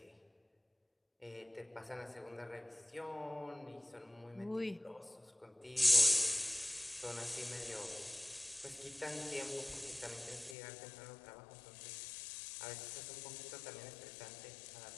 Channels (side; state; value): right; drops out; at 10.6 s